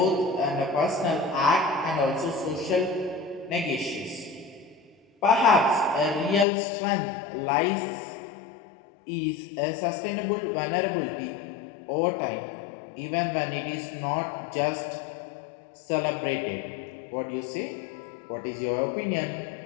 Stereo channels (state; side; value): drops out; right; at 6.5 s